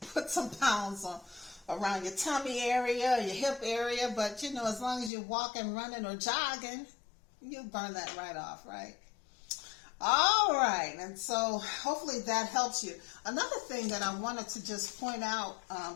put some pounds around your tummy area, your hip area, but as long as you're walking, running, or jogging, you'll burn that right off, right? All right, and so hopefully that helps you. Another thing that I wanted to just point out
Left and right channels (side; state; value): right; drops out; at 5.1 s